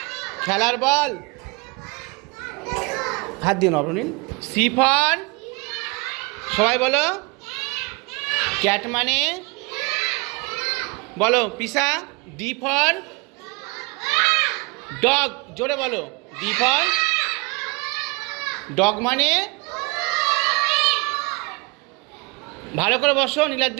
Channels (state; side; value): quieter; left; 28.6 dB